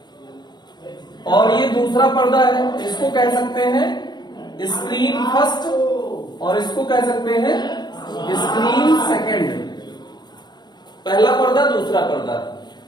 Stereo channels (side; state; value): right; late; 0.21 ms